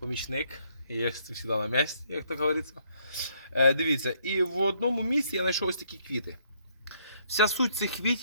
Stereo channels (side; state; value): both; inverted; correlation -0.69